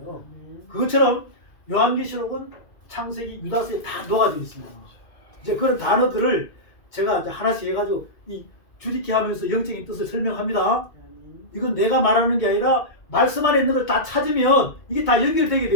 그것처럼 요한계시록은 창세기 유다서에 다 녹아져 있습니다. 이제 그런 단어들을 제가 이제 하나씩 해가지고 이 주리키 하면서 영적인 뜻을 설명합니다. 이건 내가 말하는 게 아니라 말씀 안에 있는 걸 다 찾으면 이게 다 연결되게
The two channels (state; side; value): late; right; 2.2 ms